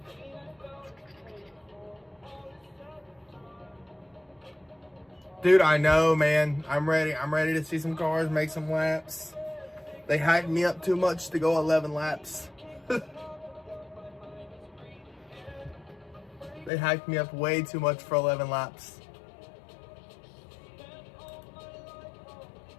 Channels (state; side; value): drops out; right; at 16.7 s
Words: Dude, I know, man. I'm ready. I'm ready to see some cars, make some laps. They hyped me up too much to go 11 laps. They hyped me up way too much for 11 laps.